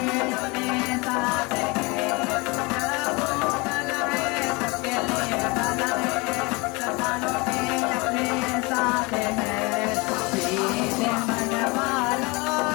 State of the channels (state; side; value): quieter; right; 26.7 dB